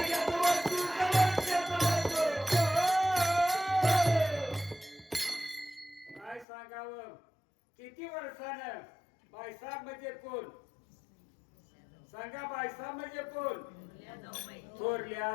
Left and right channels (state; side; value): drops out; right; at 6.5 s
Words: किती वर्षानं बायसाब म्हणजे कोण सांगा. बायसाब म्हणजे कोण? थोरल्या